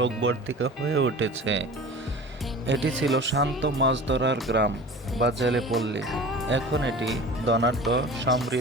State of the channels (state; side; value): normal; both; correlation 0.38